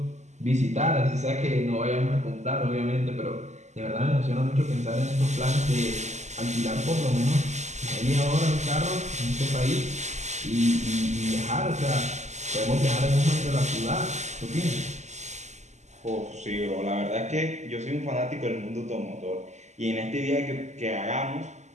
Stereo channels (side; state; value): left; late; 0.33 ms